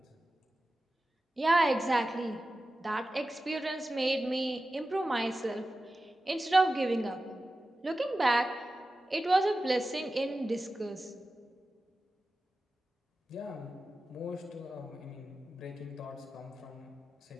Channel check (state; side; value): normal; both; correlation 0.94